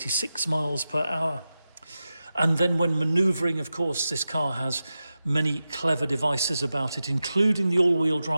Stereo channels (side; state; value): both; inverted; correlation -0.93